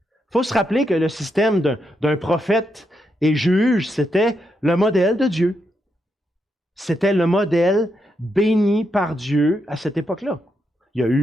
Il faut se rappeler que le système d'un prophète et juge, c'était le modèle de Dieu. C'était le modèle béni par Dieu à cette époque-là. Il y a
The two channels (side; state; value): both; normal; correlation 0.82